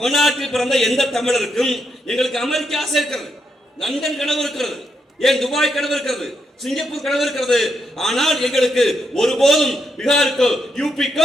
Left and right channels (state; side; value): normal; both; correlation 0.81